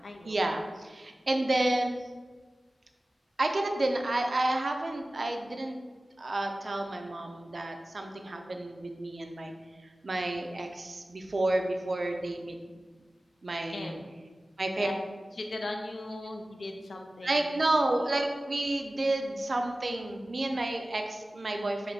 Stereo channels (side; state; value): both; normal; correlation 0.97